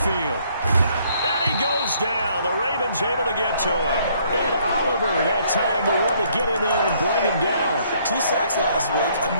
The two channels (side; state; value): both; inverted; correlation -0.65